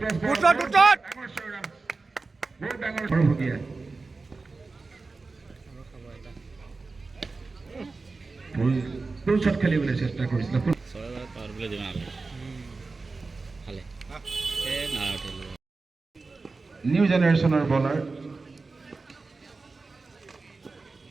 ফুলশট খেলিবলৈ চেষ্টা কৰিছিল নিউ জেনেৰেশ্যনৰ বলাৰ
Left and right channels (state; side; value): quieter; left; 3.9 dB